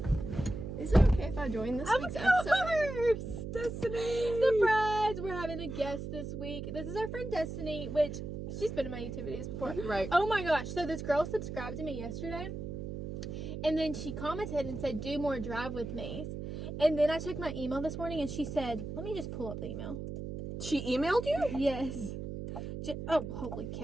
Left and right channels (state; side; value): noise; right; hum, 6 dB below the sound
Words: Is it okay if I join this week's episode? Of course! Destiny! Surprise! We're having a guest this week. This is our friend Destiny, which she's been in my YouTube videos before. Right. Oh my gosh. So this girl subscribed to me yesterday. And then she commented and said, do more drive with me. And then I checked my email this morning and she said, let me just pull up the email. She emailed you? Yes. Oh, holy